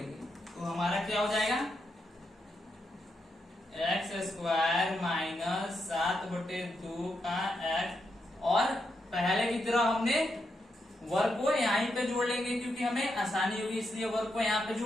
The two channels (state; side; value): normal; both; correlation 0.83